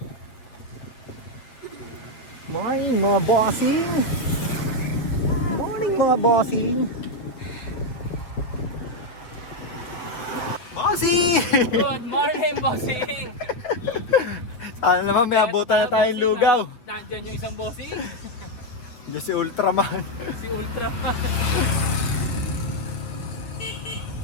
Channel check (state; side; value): late; right; 8.5 ms